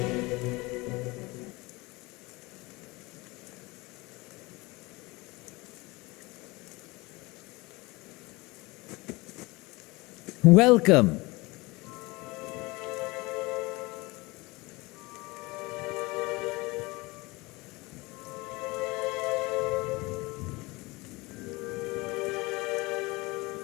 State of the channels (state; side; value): quieter; right; 23.3 dB